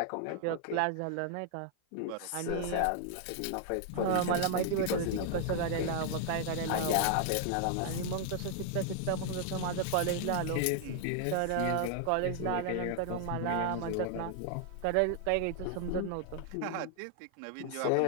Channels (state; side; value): different; both; correlation 0.00